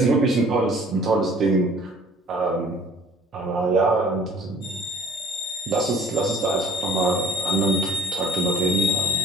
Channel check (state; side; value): normal; both; correlation 0.52